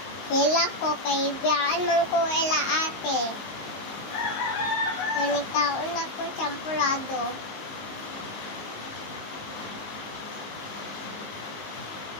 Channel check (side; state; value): right; late; 19 ms